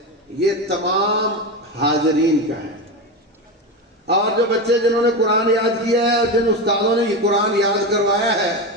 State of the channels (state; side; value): normal; both; correlation 0.19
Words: یہ تمام حاضرین کا ہے۔ اور جو بچے جنہوں نے قرآن یاد کیا ہے اور جن استادوں نے یہ قرآن یاد کروایا ہے،